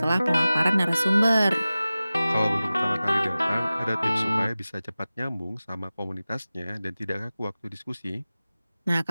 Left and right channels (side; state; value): both; inverted; correlation -0.97